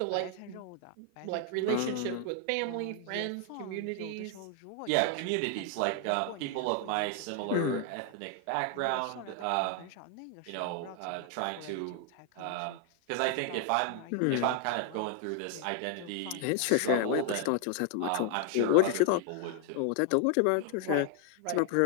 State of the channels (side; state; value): both; different; correlation 0.00